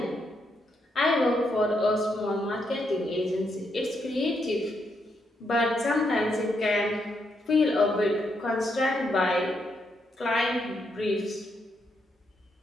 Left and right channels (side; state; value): both; normal; correlation 0.79